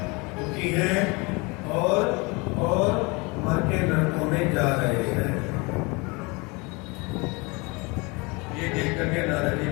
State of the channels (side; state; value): right; quieter; 27.3 dB